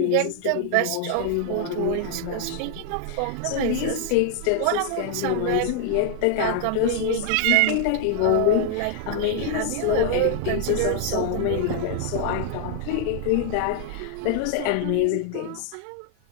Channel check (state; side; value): different; both; correlation 0.00